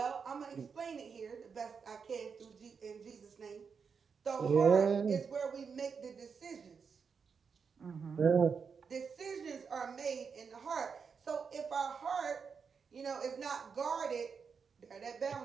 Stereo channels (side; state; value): left; quieter; 5.9 dB